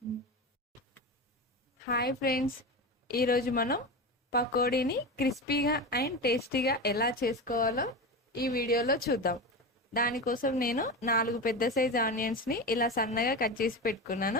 Hi friends, ఈరోజు మనం పకోడీని క్రిస్పీగా అండ్ టేస్టీగా ఎలా చేసుకోవాలో ఈ వీడియోలో చూద్దాం. దానికోసం నేను 4 పెద్ద సైజ్ ఆనియన్స్ని ఇలా సన్నగా కట్ చేసి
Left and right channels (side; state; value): both; normal; correlation 0.23